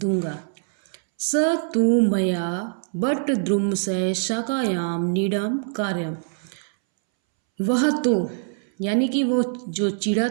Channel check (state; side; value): silent; left; 63 dB below the other